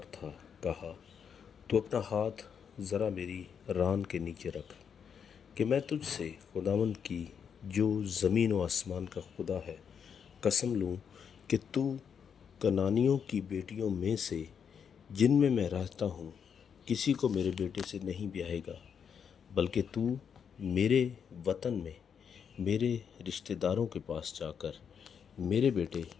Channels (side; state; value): right; quieter; 7.3 dB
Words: تھا، کہا، تو اپنا ہاتھ ذرا میری ران کے نیچے رکھ، کہ میں تجھ سے خداوند کی جو زمین و آسمان کا خدا ہے قسم لوں کہ تو کنانیوں کی بیٹیوں میں سے جن میں رہتا ہوں کسی کو میرے بیٹے سے نہیں بیاہے گا، بلکہ تو میرے وطن میں میرے رشتہ داروں کے پاس جا کر میرے بیٹے